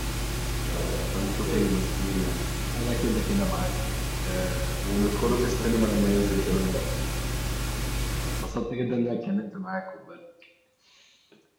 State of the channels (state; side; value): identical; both; correlation 1.00